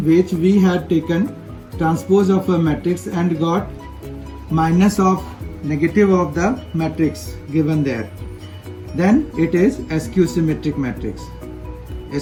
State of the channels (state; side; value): identical; both; correlation 1.00